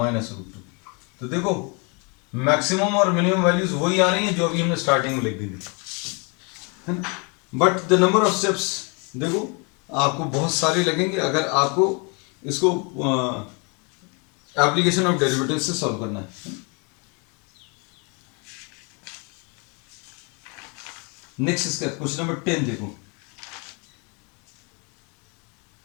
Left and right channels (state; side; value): quieter; right; 33.1 dB